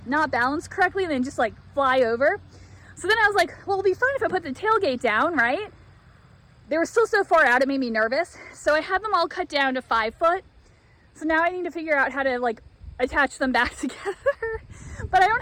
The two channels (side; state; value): both; identical; correlation 1.00